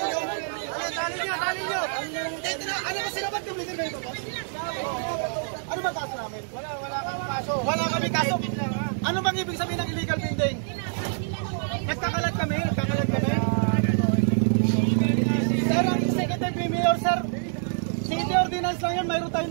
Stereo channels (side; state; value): left; silent; digital silence